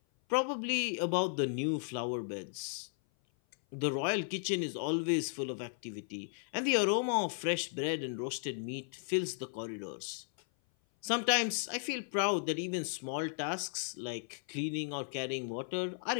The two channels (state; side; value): silent; right; 54 dB below the other